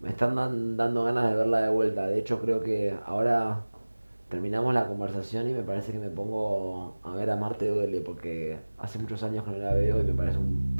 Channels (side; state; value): both; inverted; correlation -1.00